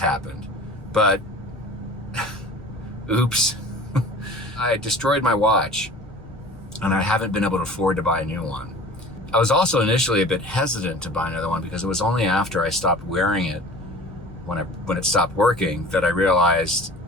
but oops, I destroyed my watch, and I haven't been able to afford to buy a new one. I was also initially a bit hesitant to buy another one because it was only after I stopped wearing it, when it stopped working, that I realized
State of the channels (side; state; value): both; normal; correlation 0.42